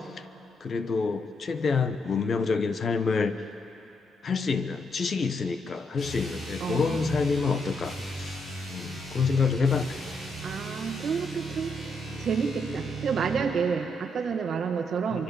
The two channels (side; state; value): both; normal; correlation 0.77